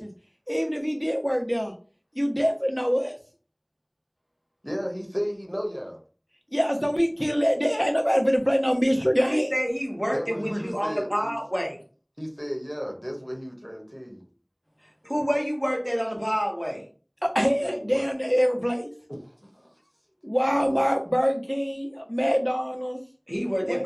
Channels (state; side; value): identical; both; correlation 1.00